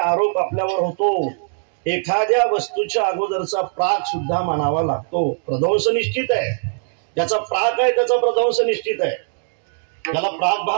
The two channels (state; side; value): silent; left; digital silence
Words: आपल्यावर होतो. एखाद्या वस्तूच्या अगोदरचा प्राग सुद्धा मानावा लागतो. प्रध्वंस निश्चित आहे. ज्याचा प्राग आहे त्याचा प्रध्वंस निश्चित आहे. त्याला प्राग